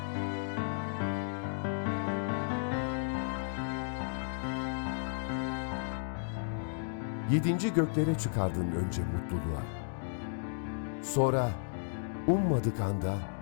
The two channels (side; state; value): right; silent; digital silence